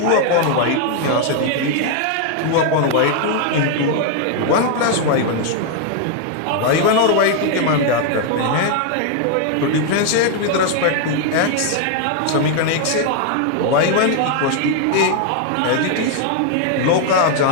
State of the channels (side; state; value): both; different; correlation 0.00